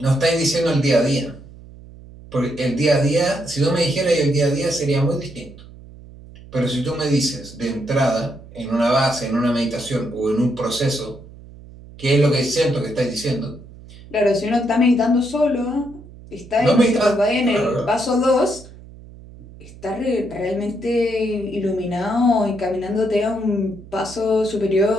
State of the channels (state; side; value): noise; right; hum, 19 dB below the sound